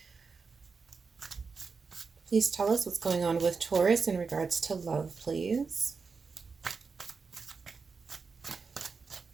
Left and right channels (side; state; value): left; quieter; 4.9 dB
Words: Please tell us what's going on with Taurus in regards to love, please.